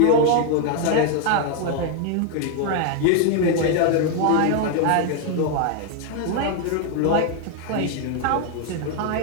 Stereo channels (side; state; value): both; different; correlation 0.00